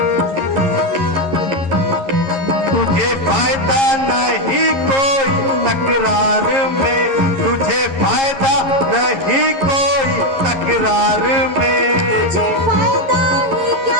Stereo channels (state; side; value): late; left; 11 ms